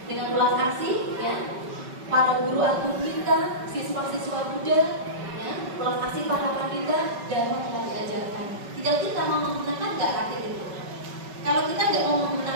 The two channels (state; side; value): late; left; 5.3 ms